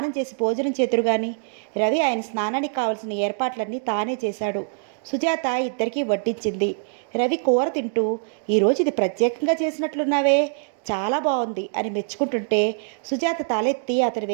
చేసి భోజనం చేతురు గాని. రవి ఆయన స్నానానికి కావలసిన ఏర్పాట్లన్నీ తానే చేశాడు. సుజాత ఇద్దరికీ వడ్డించింది. రవి కూర తింటూ, ఈరోజు ఇది ప్రత్యేకంగా చేసినట్లున్నావే, చాలా బాగుంది అని మెచ్చుకుంటుంటే సుజాత తలెత్తి అతని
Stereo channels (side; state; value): left; silent; digital silence